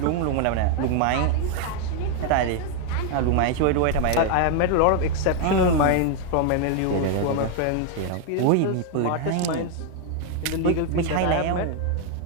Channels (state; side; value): different; both; correlation 0.01